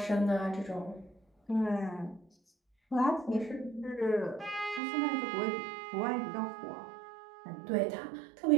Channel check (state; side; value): drops out; left; at 4.8 s